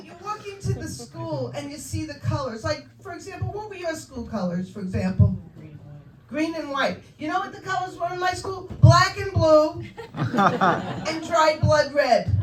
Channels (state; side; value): identical; both; correlation 1.00